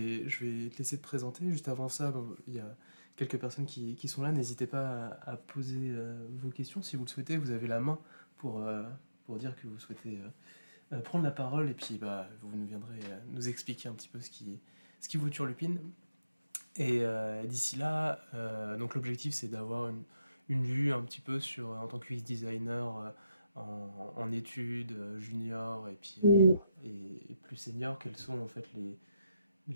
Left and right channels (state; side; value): inverted; both; correlation -0.83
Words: te laisser te présenter. Juste avant ça, bon, il y a quelques personnes qui sont là. N'hésitez pas à poser vos questions si vous le souhaitez. Vous avez la main pour, euh, pour dire que vous souhaitez prendre la parole. Et puis, bah, vous nous viendrez nous expliquer un petit peu ce qui vous turlupine. Et d'ici là, donc l'objectif c'est d'avoir une vue un petit peu sur, en tant que UX designer en études junior et puis Mm. et plus senior, quels sont en fait